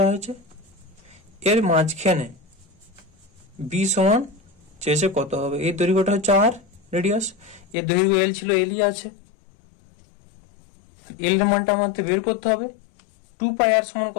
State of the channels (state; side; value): drops out; right; at 7.8 s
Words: হয়েছে। এর মাঝখানে বি সমান চেয়েছে কত হবে, এই দৈর্ঘ্যটা হচ্ছে আর রেডিয়াস, এর দৈর্ঘ্য এল ছিল, এলই আছে। এল এর মানটা আমাদের বের করতে হবে। 2 পাই আর সমান